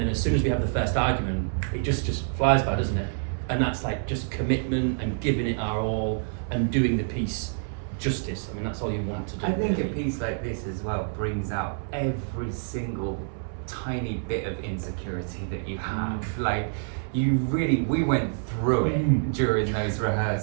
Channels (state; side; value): silent; left; 60 dB below the other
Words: as soon as we have the first argument, it just flies by, doesn't it? And that's like just commitment and giving it our all and doing the piece justice. I mean, that's all you want to do. I think a piece like this as well brings out every single tiny bit of insecurity that you have. Like, we went through it during those